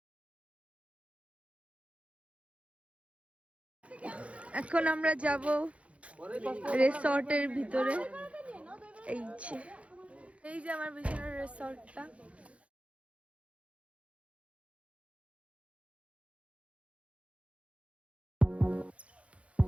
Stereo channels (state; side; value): late; left; 0.063 ms